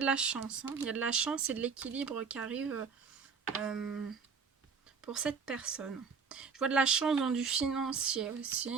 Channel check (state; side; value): quieter; left; 5.7 dB